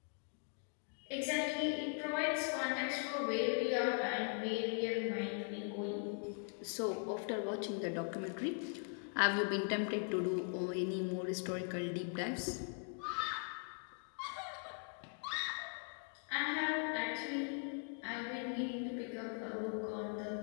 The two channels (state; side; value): silent; right; 51 dB below the other